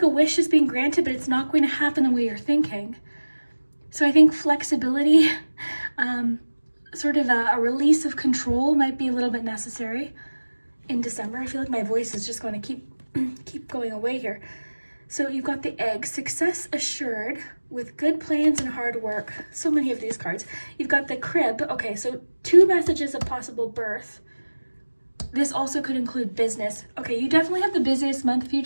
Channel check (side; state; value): both; inverted; correlation -1.00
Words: a wish is being granted, but it's not going to happen the way you're thinking. So I think flexibility, sort of a release of control might be a little bit necessary in December. I feel like my voice is just going to keep going away here. So you've got the egg, success assured with good plans and hard work. So many of these cards. You've got the crib. Okay, so 2 messages of possible birth. This also could include business. Okay, you definitely have the busiest month. If you